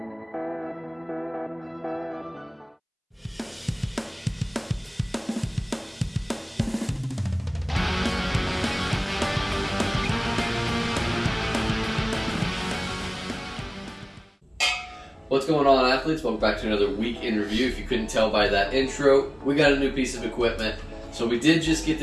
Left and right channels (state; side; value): identical; both; correlation 1.00